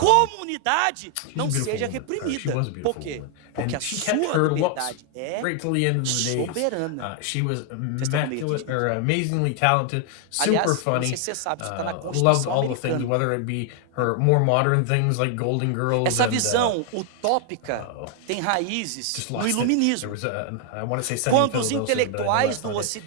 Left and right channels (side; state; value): both; different; correlation 0.00